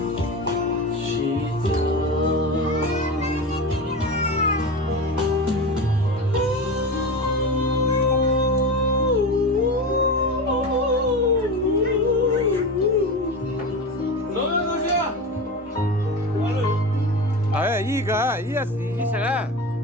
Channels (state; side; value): normal; both; correlation 0.25